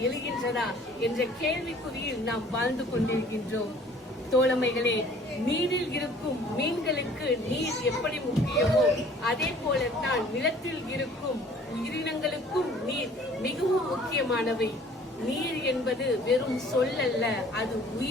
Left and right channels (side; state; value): both; normal; correlation 0.53